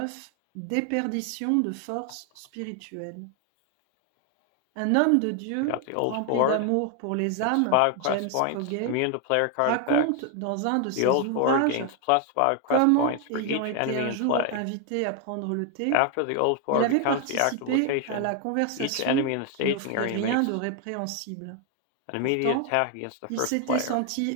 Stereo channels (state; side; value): different; both; correlation 0.00